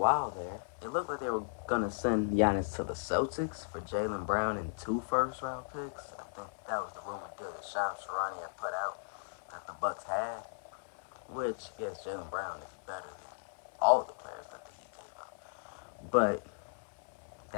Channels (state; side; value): silent; right; digital silence